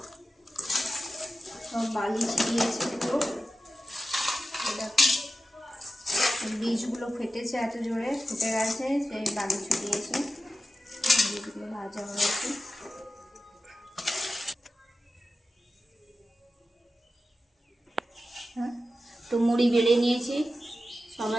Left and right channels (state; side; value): normal; both; correlation 0.92